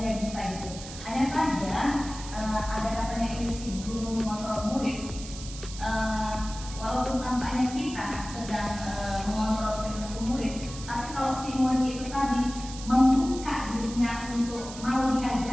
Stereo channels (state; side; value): noise; right; hiss, 13 dB below the sound